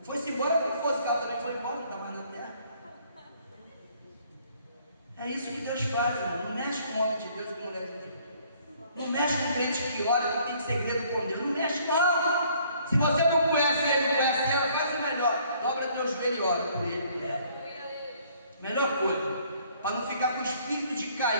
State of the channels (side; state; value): both; inverted; correlation -0.61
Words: foi-se embora, que fosse, que ela também foi embora, não está mais na terra. É isso que Deus faz, irmão. Não mexe com homem de Deus e com mulher de Deus. Não mexe com crente que ora, que tem segredo com Deus. Não mexe, não. Se você não conhece ele, não conhece ela, faz o melhor. Dobra teu joelho e ora por ele. Melhor coisa. Para não ficar com o espírito de